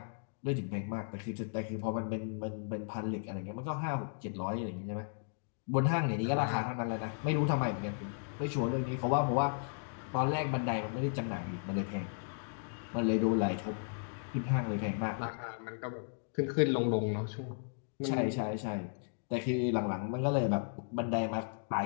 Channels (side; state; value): right; silent; digital silence